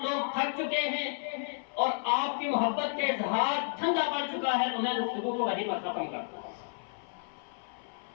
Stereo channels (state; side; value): silent; right; 57 dB below the other